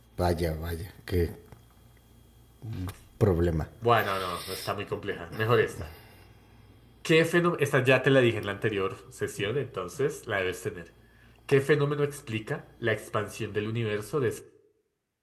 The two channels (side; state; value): both; identical; correlation 1.00